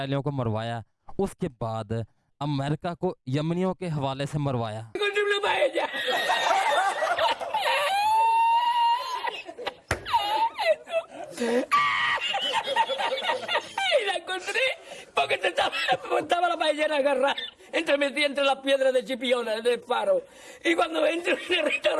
को मरवाया, उसके बाद अमेरिका को यमनियों के हवाले से मरवाया। Y la encontré porque estaba la ballena agarrada metida entre las piedras de Chipiona, del faro. Y cuando entro en el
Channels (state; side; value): identical; both; correlation 1.00